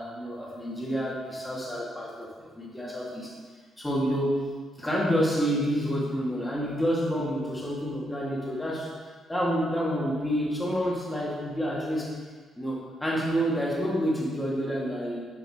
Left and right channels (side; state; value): both; normal; correlation 0.79